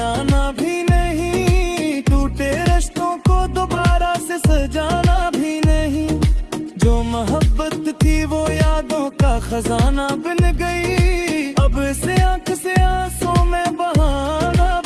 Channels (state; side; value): identical; both; correlation 1.00